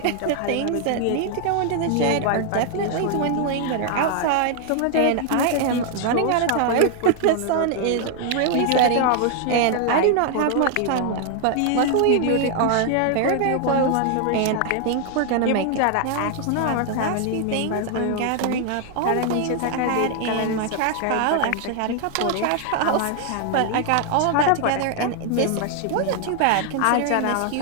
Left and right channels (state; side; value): different; both; correlation 0.00